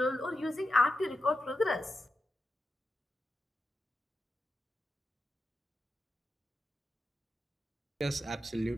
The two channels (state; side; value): normal; both; correlation 0.90